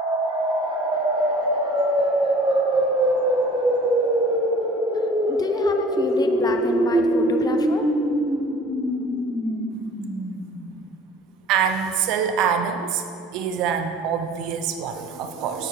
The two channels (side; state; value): both; normal; correlation 0.48